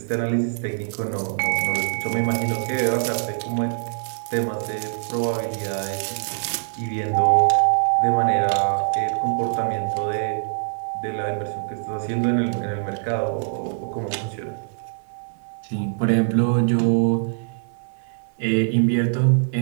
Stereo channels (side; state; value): left; silent; 59 dB below the other